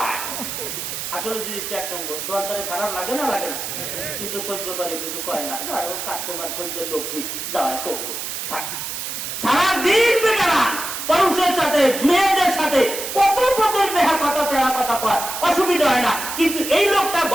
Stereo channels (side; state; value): right; noise; hiss, 5 dB below the sound